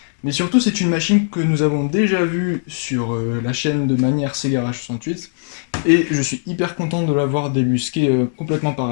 Mais surtout, c'est une machine que nous avons déjà vue sur la chaîne de Manière Sega 68 et je suis hyper content de l'avoir débusquée complètement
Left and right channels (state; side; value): silent; right; 64 dB below the other